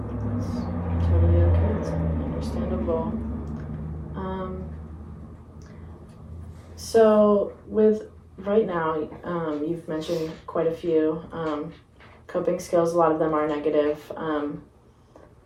It's totally okay. It's understandable. So with right now, you've mentioned quite a few coping skills. A lot of them are negative,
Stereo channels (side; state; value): both; identical; correlation 1.00